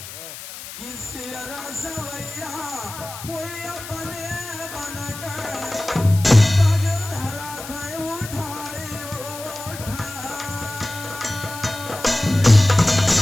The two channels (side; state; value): left; noise; hiss, 12 dB below the sound